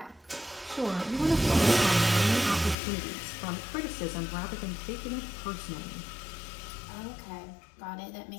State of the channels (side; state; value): right; drops out; at 2.8 s